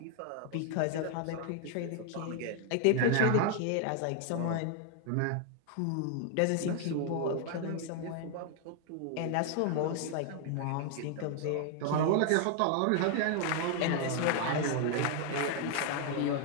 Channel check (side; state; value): both; different; correlation 0.00